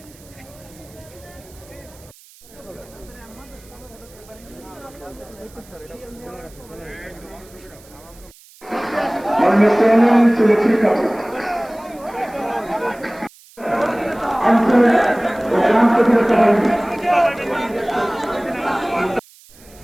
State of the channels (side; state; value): right; noise; hiss, 25 dB below the sound